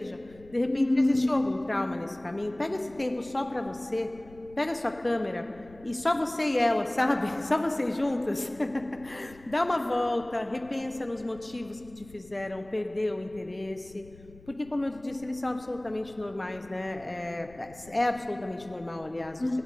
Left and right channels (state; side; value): noise; left; rumble, 22 dB below the sound